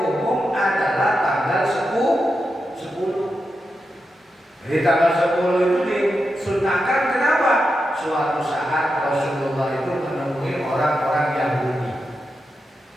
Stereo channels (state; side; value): normal; both; correlation 0.88